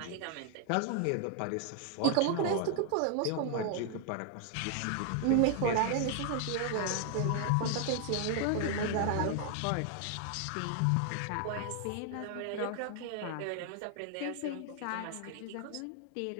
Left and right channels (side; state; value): both; different; correlation 0.00